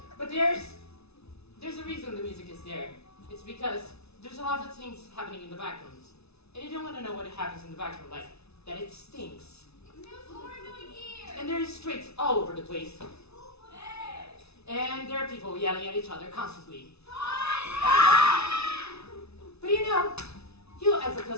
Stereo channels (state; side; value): late; right; 0.80 ms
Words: But there's a reason the music is there. It's because there's a lot of things happening in the back rooms. And you don't want to know what happens in the back room, like that it stinks. And there's streaks all over the place. And there are people yelling at each other constantly. But you know, you as a